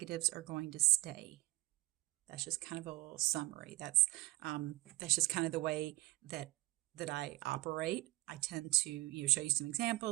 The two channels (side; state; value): left; quieter; 19.6 dB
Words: are going to stay. That's just kind of a little summary. That's just kind of the way that I operate. I tend to show you some